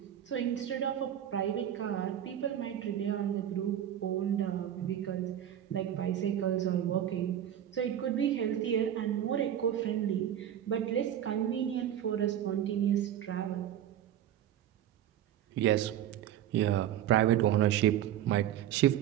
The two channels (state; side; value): quieter; left; 11.0 dB